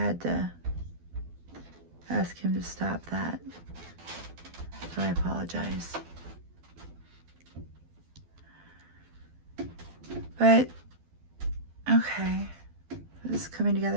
to ask him to stop that. So I apologize. But, okay. This is coming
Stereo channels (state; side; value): late; left; 12 ms